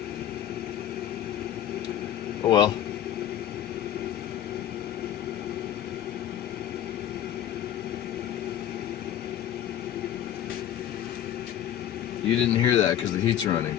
Oh well. You didn't hear that because the heat's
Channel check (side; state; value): right; quieter; 10.8 dB